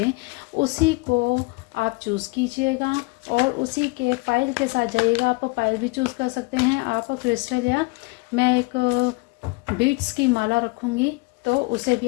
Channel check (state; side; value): quieter; right; 26.1 dB